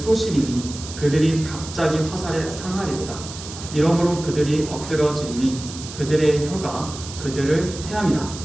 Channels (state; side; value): noise; right; hiss, 12 dB below the sound